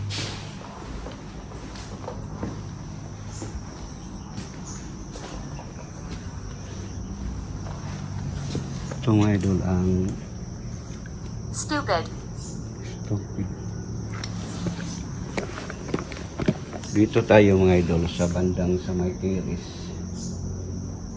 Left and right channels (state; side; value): identical; both; correlation 1.00